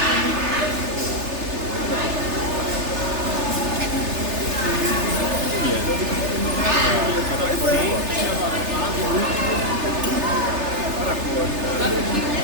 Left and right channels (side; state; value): left; late; 3.3 ms